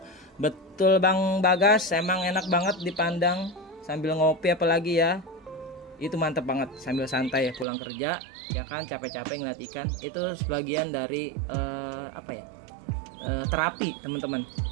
Betul Bang Bagas, emang enak banget dipandang sambil ngopi apalagi ya. Itu mantep banget sambil santai ya pulang kerja ya kan, capek-capek ngeliat ikan. Itu sebagian dari terapi teman-teman,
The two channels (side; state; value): left; drops out; at 7.7 s